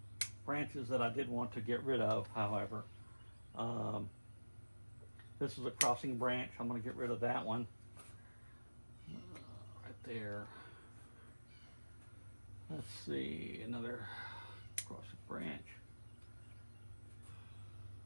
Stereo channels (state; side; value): inverted; both; correlation -1.00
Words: branches that I did want to get rid of, however. This is a crossing branch. I'm going to get rid of that one. Right there. Let's see, another crossing branch.